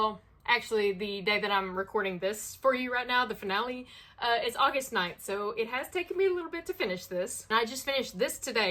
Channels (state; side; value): identical; both; correlation 1.00